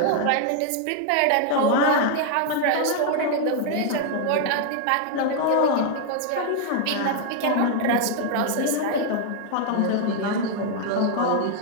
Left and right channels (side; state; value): both; different; correlation 0.00